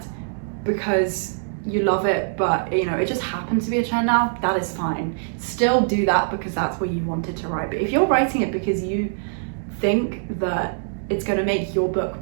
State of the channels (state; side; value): silent; left; digital silence